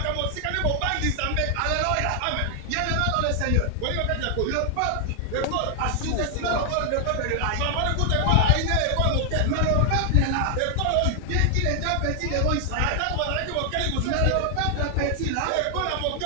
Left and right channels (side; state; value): both; different; correlation 0.00